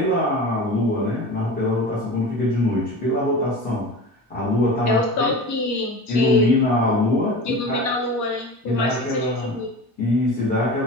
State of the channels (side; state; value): both; normal; correlation 0.33